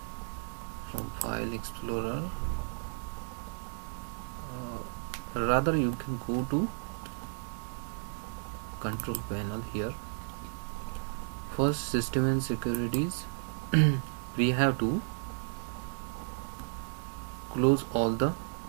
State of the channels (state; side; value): silent; left; 55 dB below the other